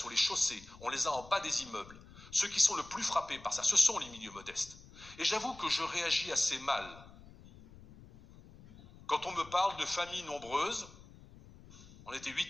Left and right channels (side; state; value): left; noise; rumble, 20 dB below the sound